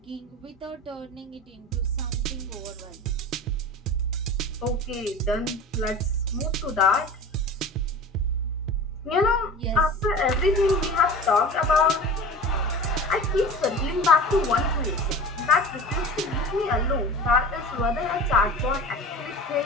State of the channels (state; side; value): normal; both; correlation 0.35